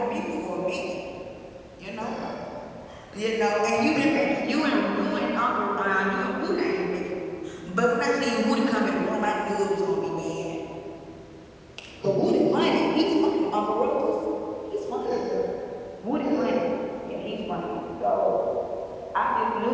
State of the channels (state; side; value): identical; both; correlation 1.00